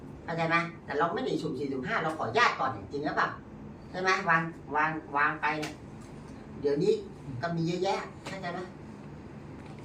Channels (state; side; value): identical; both; correlation 1.00